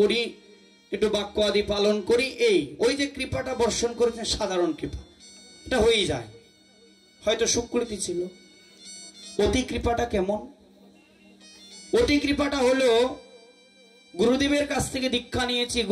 একটু বাক্য আদি পালন করি, এই ওই যে কৃপাটা বর্ষণ করেছেন সাধারণ কৃপা, এটা হয়েই যায়, হয়তো সুকৃতি ছিল। অতি কৃপাটা কেমন? অতি কৃপাটা হলো গুরুদেবের কাছ থেকে দীক্ষা নিয়েছি,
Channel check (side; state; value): both; identical; correlation 1.00